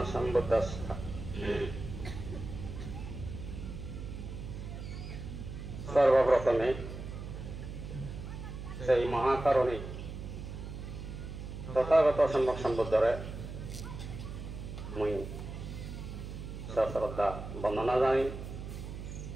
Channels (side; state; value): right; noise; hum, 8 dB below the sound